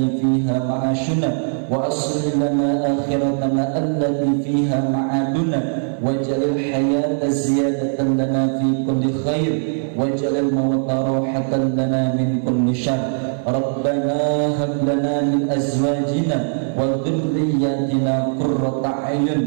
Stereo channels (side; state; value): left; silent; digital silence